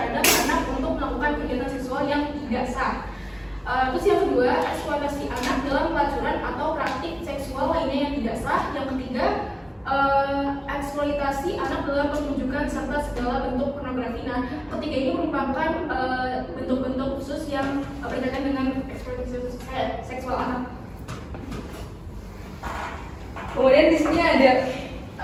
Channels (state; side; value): identical; both; correlation 1.00